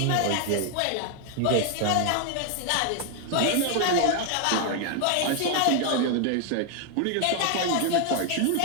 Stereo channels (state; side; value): different; both; correlation 0.00